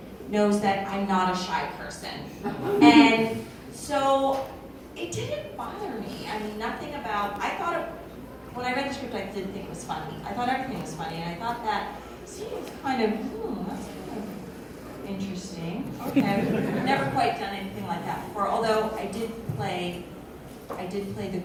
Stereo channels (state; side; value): identical; both; correlation 1.00